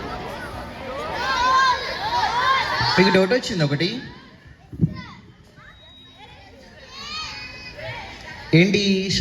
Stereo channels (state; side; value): identical; both; correlation 1.00